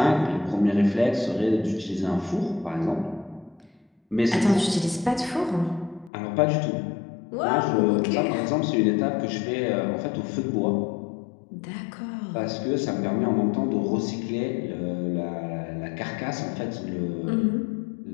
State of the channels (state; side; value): drops out; right; at 6.1 s